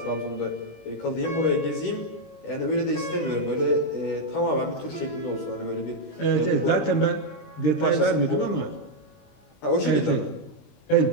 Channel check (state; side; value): late; right; 20 ms